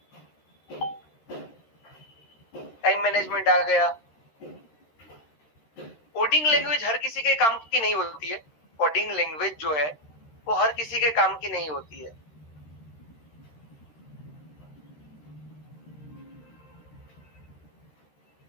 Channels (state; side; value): late; right; 13 ms